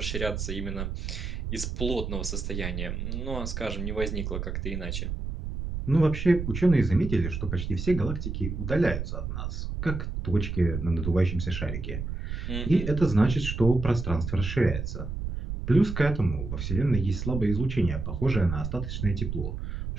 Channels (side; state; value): right; noise; rumble, 4 dB below the sound